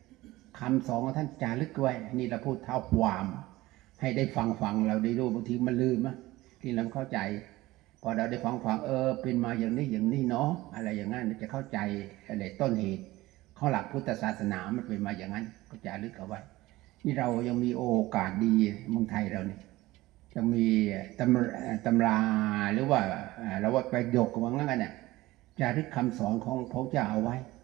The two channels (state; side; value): quieter; left; 18.3 dB